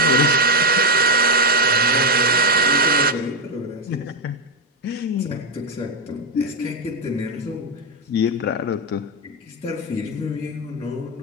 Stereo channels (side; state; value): both; normal; correlation 0.05